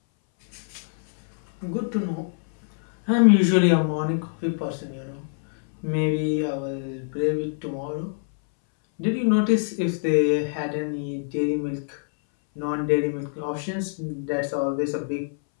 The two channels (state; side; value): silent; right; 60 dB below the other